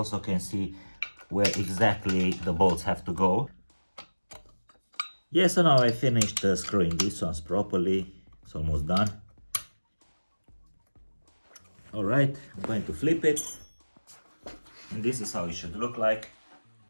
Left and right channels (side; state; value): both; inverted; correlation -1.00